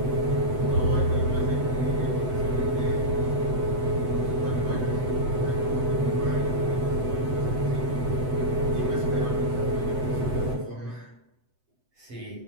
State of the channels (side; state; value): left; late; 7.9 ms